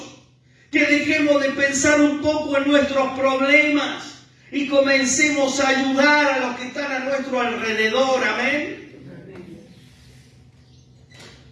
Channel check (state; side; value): identical; both; correlation 1.00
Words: que dejemos de pensar un poco en nuestros problemas y comencemos a ayudar a los que están a nuestro alrededor. Amén.